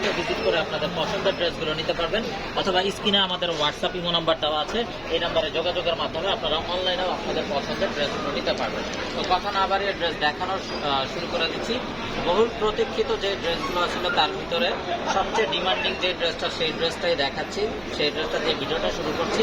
ভিজিট করে আপনাদের পছন্দের ড্রেসগুলো নিতে পারবেন, অথবা স্ক্রিনে আমাদের হোয়াটসঅ্যাপ ইমো নাম্বার দেওয়া আছে। এই নাম্বারে যোগাযোগের মাধ্যমে আপনারা অনলাইনেও আপনাদের পছন্দের ড্রেসগুলো নিতে পারবেন। তো কথা না বাড়িয়ে ড্রেস দেখানো শুরু করে দিচ্ছি। বহুল প্রতীক্ষিত যে ড্রেসগুলো ছিল তার ভিতরে সবচেয়ে ডিমান্ডিং যে ড্রেসটা, সেই ড্রেসটাই দেখাচ্ছি। সেই ড্রেসটা দিয়ে ভিডিওটা শুরু করছি।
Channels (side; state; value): left; noise; hum, 25 dB below the sound